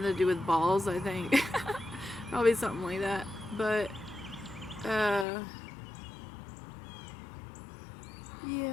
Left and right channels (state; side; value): drops out; right; at 5.2 s